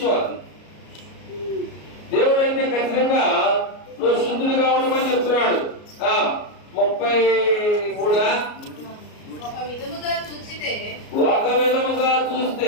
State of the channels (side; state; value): right; late; 33 ms